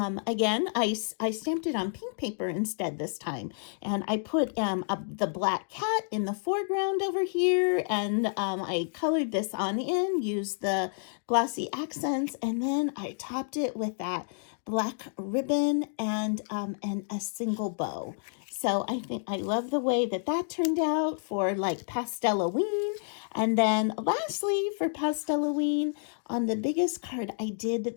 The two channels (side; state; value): right; silent; digital silence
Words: again, I stamped it on pink paper instead this time. And I put the black cat in the foreground over here. And I colored this on in, used the glossy accents. And then I topped it with that black ribbon and a single bow. So I think I love the way that that turned out for like Pastelween. And then lastly for Pastelween, on the biggest card, I did